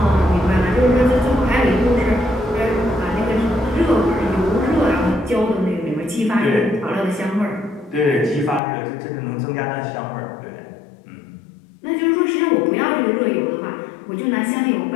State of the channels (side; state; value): right; drops out; at 8.6 s